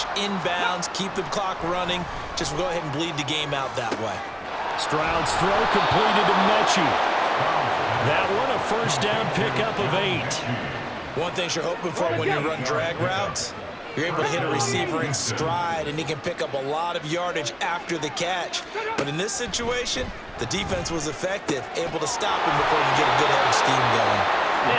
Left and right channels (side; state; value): both; identical; correlation 1.00